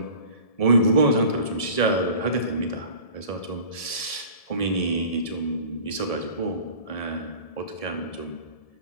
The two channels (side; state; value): right; late; 1.7 ms